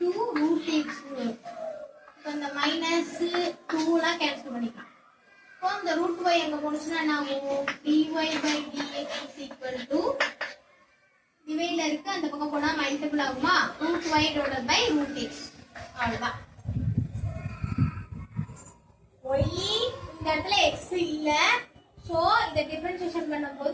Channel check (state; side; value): identical; both; correlation 1.00